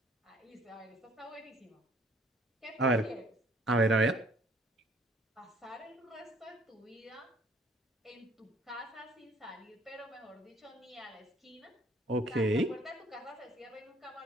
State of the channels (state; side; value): normal; both; correlation 0.58